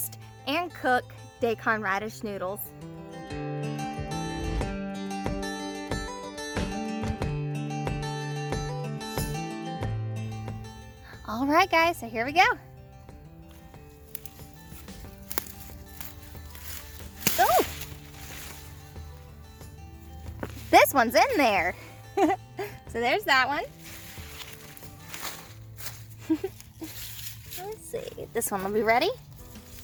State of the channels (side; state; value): both; identical; correlation 1.00